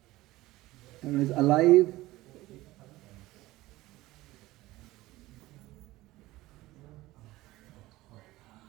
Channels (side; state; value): left; quieter; 18.0 dB